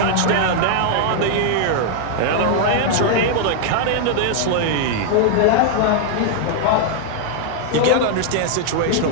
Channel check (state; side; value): different; both; correlation 0.00